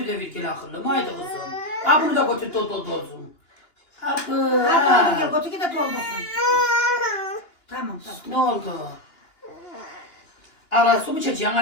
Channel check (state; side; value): late; right; 2.9 ms